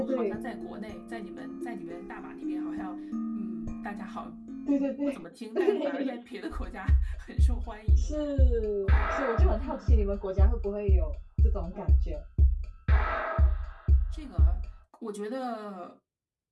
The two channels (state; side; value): identical; both; correlation 1.00